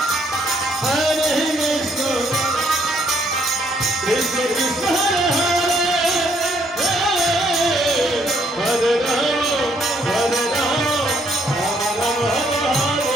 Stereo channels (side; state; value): both; normal; correlation 0.69